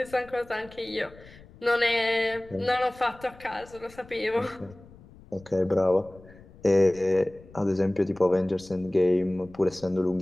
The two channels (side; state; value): left; noise; rumble, 22 dB below the sound